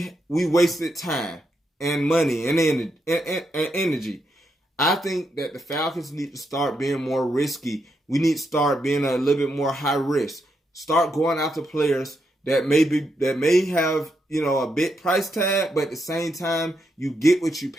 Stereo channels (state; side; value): normal; both; correlation 0.81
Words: wasted time and money and energy. I think that the Falcons need to start being more risky. We need to start being a little bit more high risk. Start going after players that may have, a big price tag, but at the same time, you get what you